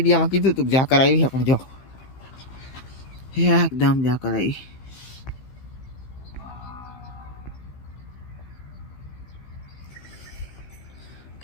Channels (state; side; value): late; right; 15 ms